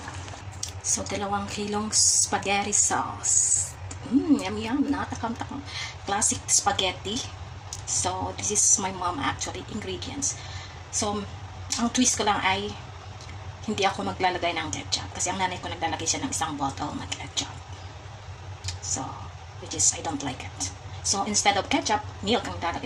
So, 2 kilong spaghetti sauce. Yum, yum. Nakatakam-takam. Classic spaghetti. So, this is my mom actually ingredients. So, ang twist ko lang ay hindi ako maglalagay ng ketchup kasi ang nanay ko naglalagay siya ng isang bottle na ketchup. So, which is I don't like it. So, instead of ketchup, milk ang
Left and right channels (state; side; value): identical; both; correlation 1.00